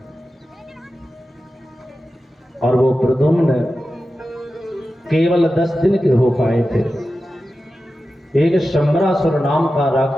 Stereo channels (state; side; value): normal; both; correlation 0.93